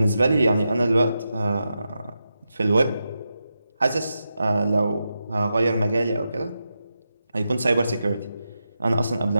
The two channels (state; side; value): inverted; both; correlation -0.88